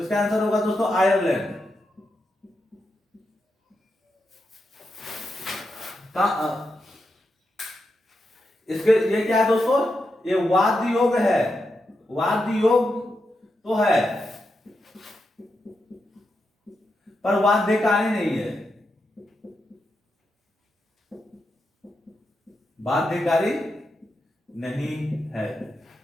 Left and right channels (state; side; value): normal; both; correlation 0.86